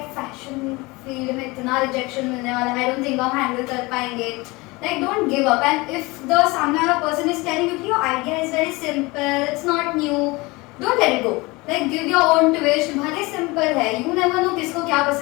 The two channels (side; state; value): right; quieter; 23.6 dB